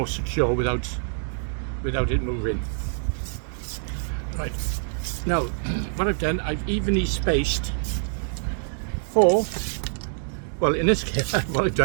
secure without without it moving. Right, now what I've done, I've evenly spaced four, well in this case what I've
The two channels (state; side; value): silent; left; digital silence